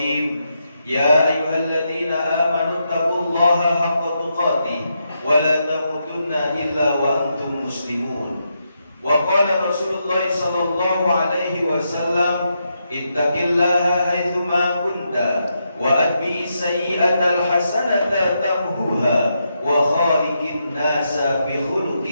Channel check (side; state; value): both; inverted; correlation -0.83